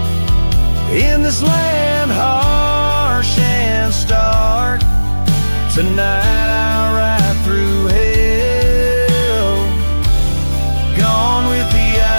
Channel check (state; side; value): inverted; both; correlation -1.00